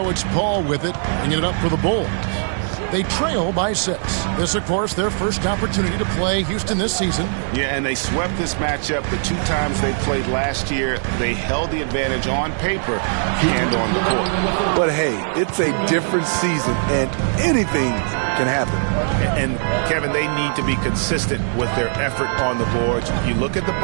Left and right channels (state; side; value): silent; left; digital silence